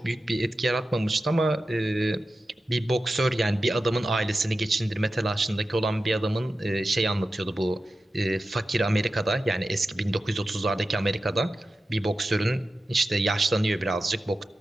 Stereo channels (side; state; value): both; normal; correlation 0.93